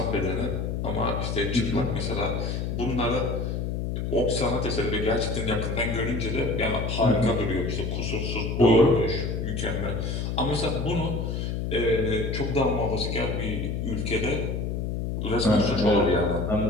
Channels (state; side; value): noise; left; hum, 2 dB below the sound